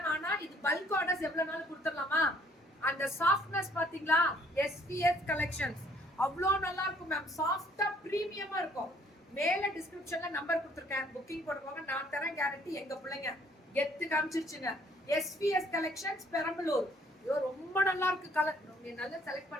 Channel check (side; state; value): both; normal; correlation 0.62